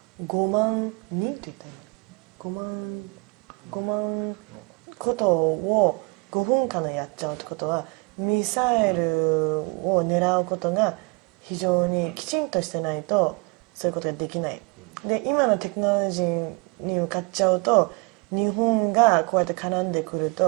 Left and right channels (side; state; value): left; quieter; 29.2 dB